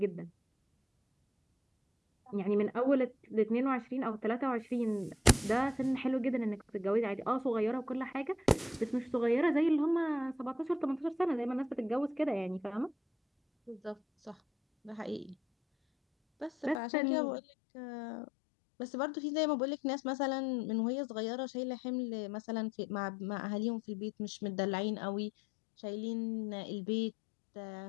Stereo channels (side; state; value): right; drops out; at 16.8 s